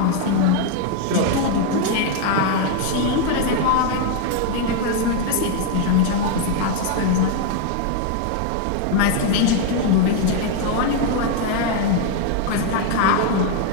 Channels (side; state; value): both; different; correlation 0.00